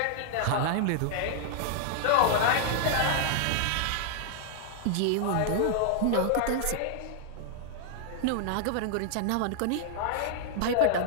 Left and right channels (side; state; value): both; different; correlation -0.01